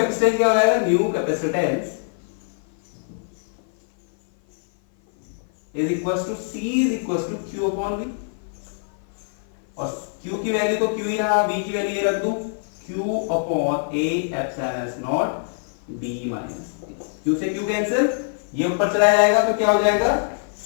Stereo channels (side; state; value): right; silent; 56 dB below the other